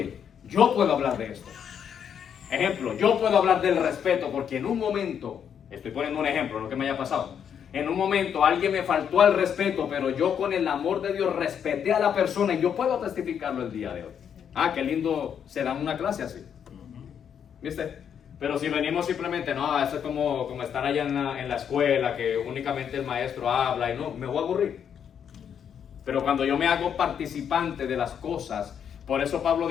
yo puedo hablar de esto. Ejemplo, yo puedo hablar del respeto, porque en un momento, estoy poniendo un ejemplo, lo que me haya pasado, en un momento alguien me faltó al respeto, pero yo con el amor de Dios respeté a la persona, y yo puedo testificarlo el día de hoy. Ah, qué lindo se da una clase así. ¿Viste? Pero si venimos simplemente, no, eso es como estar allá en la escuela, que únicamente el maestro habla, y no, me voy a aburrir. Pero cuando yo me hago participante de las cosas, por eso Pablo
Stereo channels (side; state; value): right; quieter; 8.2 dB